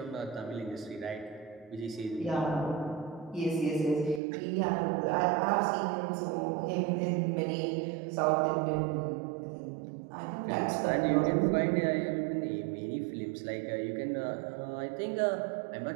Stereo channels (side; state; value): left; drops out; at 4.2 s